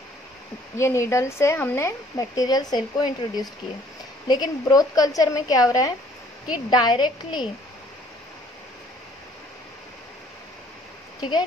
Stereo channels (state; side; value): normal; both; correlation 0.59